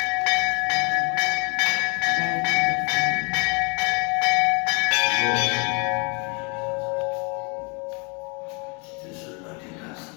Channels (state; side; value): quieter; right; 33.4 dB